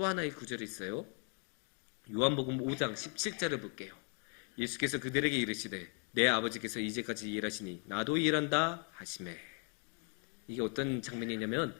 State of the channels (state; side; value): quieter; right; 40.0 dB